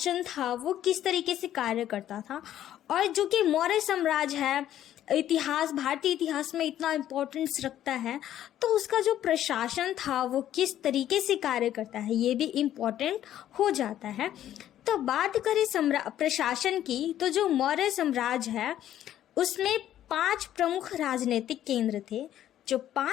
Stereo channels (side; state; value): right; quieter; 11.7 dB